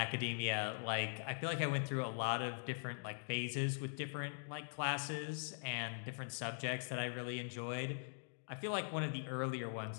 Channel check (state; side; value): silent; right; digital silence